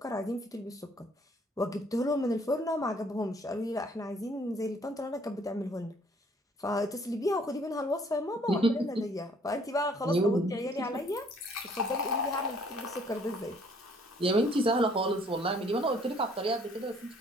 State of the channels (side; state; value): both; normal; correlation 0.61